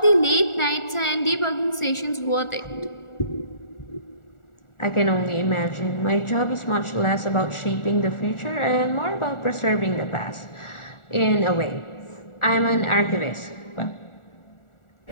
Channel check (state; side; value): late; right; 1.4 ms